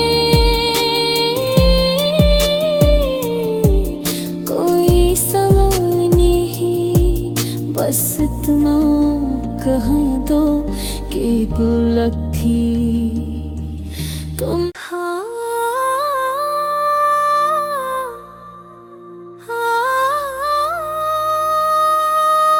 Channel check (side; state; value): both; identical; correlation 1.00